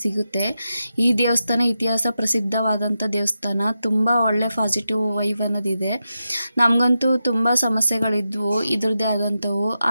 ಸಿಗುತ್ತೆ. ಈ ದೇವಸ್ಥಾನ ಇತಿಹಾಸ ಪ್ರಸಿದ್ಧವಾದಂಥ ದೇವಸ್ಥಾನ. ತುಂಬ ಒಳ್ಳೆ ಪಾಸಿಟಿವ್ ವೈಬ್ ಅನ್ನೋದಿದೆ. ನಮಗಂತೂ ತುಂಬ ಸಮಸ್ಯೆಗಳಿದ್ವು ಇದ್ರದ್ದೇ ಆದಂಥವು.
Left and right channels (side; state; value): both; inverted; correlation -0.89